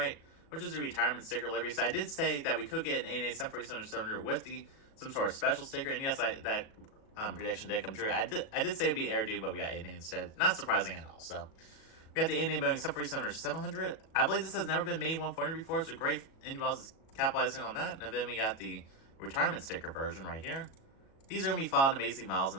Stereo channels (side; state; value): right; late; 37 ms